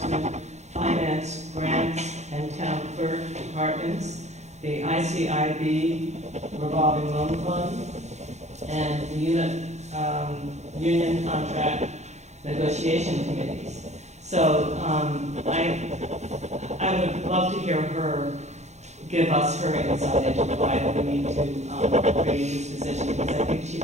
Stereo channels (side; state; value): left; late; 0.33 ms